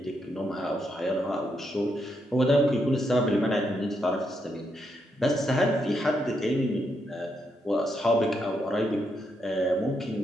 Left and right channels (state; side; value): normal; both; correlation 0.80